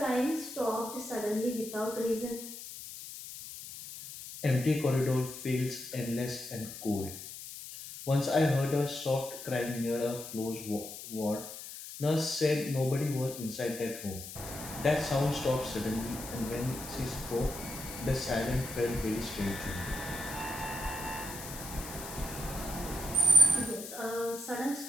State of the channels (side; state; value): left; noise; hiss, 11 dB below the sound